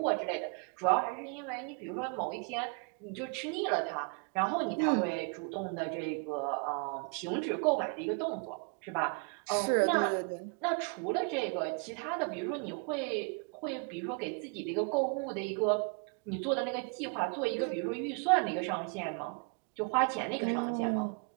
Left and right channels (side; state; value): left; quieter; 37.1 dB